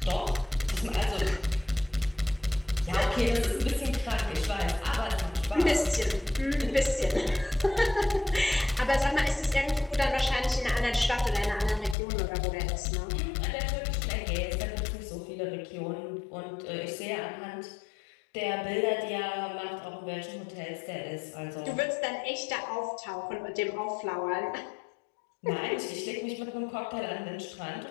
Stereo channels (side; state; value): right; drops out; at 12.0 s